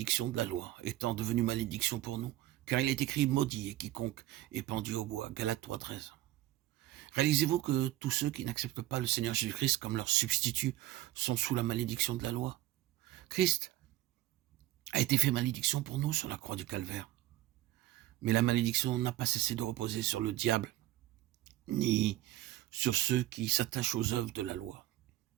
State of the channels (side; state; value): left; quieter; 15.2 dB